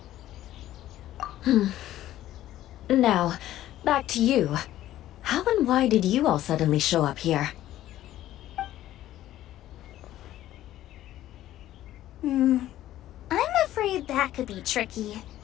Now, back to you. How and why did you all suddenly show up here? I'm afraid that could be tricky.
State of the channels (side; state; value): right; quieter; 13.6 dB